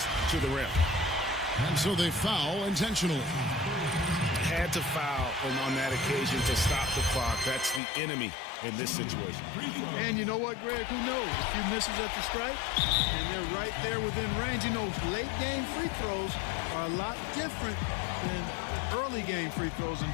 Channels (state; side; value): drops out; right; at 7.8 s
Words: to the rim. And so they foul intentionally. Had to foul on that occasion to stop the clock. That's the enemy in this situation. And you know what, Greg? Who knows? A few misses at the stripe, and they're right there within range. You know, late game free throws are a lot different than early game free throws in